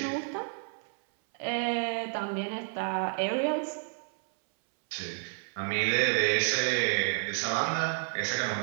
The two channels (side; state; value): left; silent; 58 dB below the other